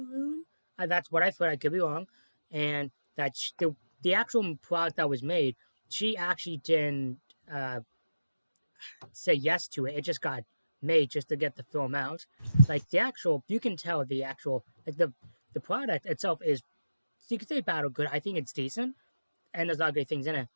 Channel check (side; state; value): both; inverted; correlation -0.96